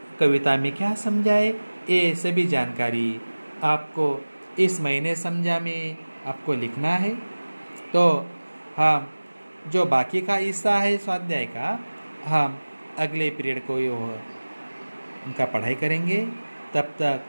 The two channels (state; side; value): inverted; both; correlation -1.00